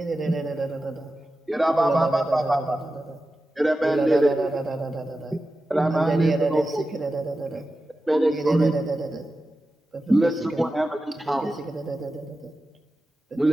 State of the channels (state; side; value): normal; both; correlation 0.93